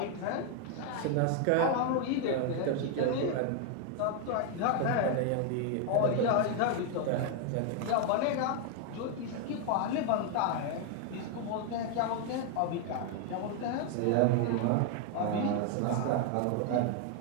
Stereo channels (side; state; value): both; different; correlation 0.01